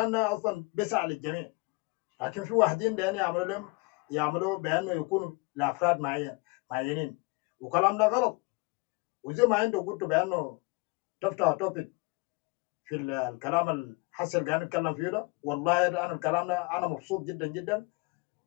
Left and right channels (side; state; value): right; quieter; 28.0 dB